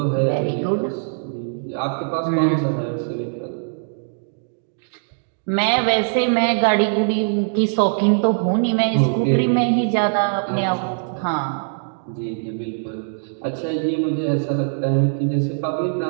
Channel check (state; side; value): silent; left; digital silence